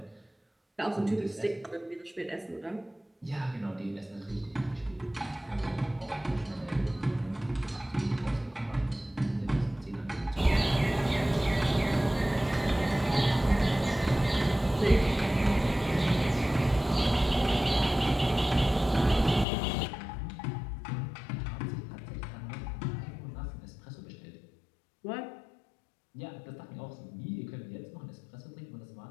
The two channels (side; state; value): right; drops out; at 19.5 s